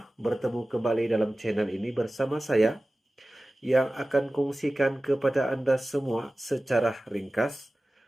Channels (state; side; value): normal; both; correlation 0.96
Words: Bertemu kembali dalam channel ini bersama saya yang akan kongsikan kepada Anda semua secara ringkas.